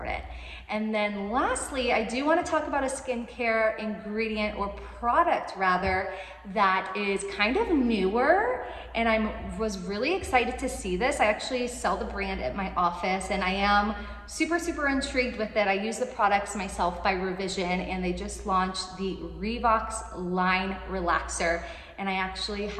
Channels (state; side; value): identical; both; correlation 1.00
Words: And then lastly, I do want to talk about a skincare ingredient, or product rather, that is kind of newer. And I was really excited to see this. I actually sell the brand at my office, and I am super, super intrigued with it. I use the products myself by Revision, and they just launched the Revox Line Relaxer. And I actually